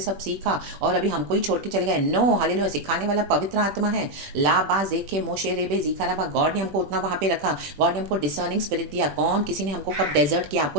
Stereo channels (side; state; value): left; late; 20 ms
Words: सब सीखा और अभी हमको ही छोड़ के चले गए। नो, हालेलुया, सिखाने वाला पवित्र आत्मा है। ला बा जेखे मोशे रेबे जीखाराबा, गॉड ने हमको उतना वहाँ पे रखा, गॉड ने हमको डिसर्निंग स्पिरिट दिया। कौन किसी ने हमको कब डेजर्ट किया,